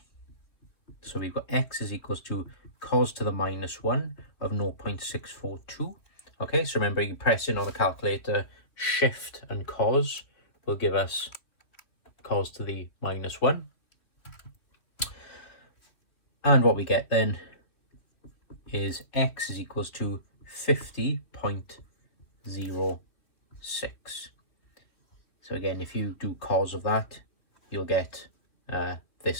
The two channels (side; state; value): right; late; 3.2 ms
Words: So we've got x is equals to cos to the minus 1 of 0.642. Okay, so remember, you press in on the calculator, shift and cos will give us cos to the minus 1. And what we get then is x is equals to 50.06. So again, if you do cos of that, you'll get